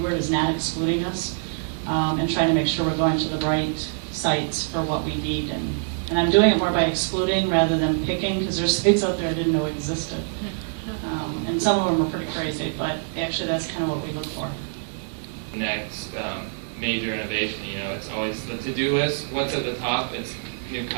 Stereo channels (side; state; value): left; silent; 62 dB below the other